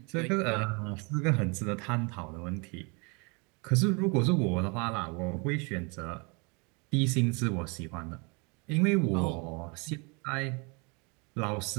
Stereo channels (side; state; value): left; quieter; 31.6 dB